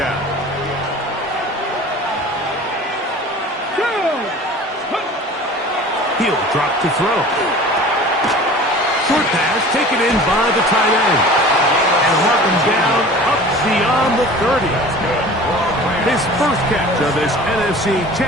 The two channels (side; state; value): both; normal; correlation 0.42